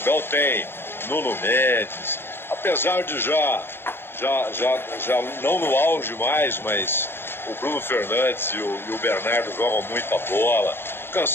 tem Nuno Mendes, apesar de já não no auge mais, mas o Bruno Fernandes e o Bernardo jogam muita bola. O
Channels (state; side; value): late; right; 0.11 ms